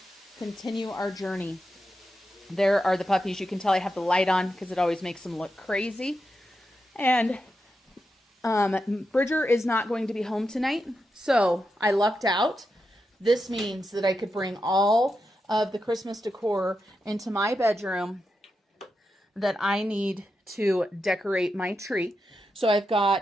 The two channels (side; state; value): both; normal; correlation 0.87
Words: Continue our journey. There are the puppies. You can tell I have the light on because it always makes them look crazy. And Bridger is not going to be home tonight, so I lucked out. This means that I could bring all of the Christmas decor into my bedroom that I need to decorate my tree. So I've